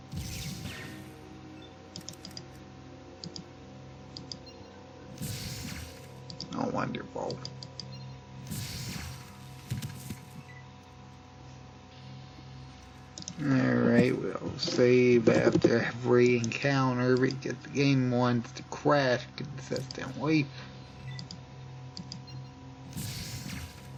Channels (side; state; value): both; identical; correlation 1.00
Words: Oh, wonderful. Alright, we'll save after every encounter because the game wants to crash consistently.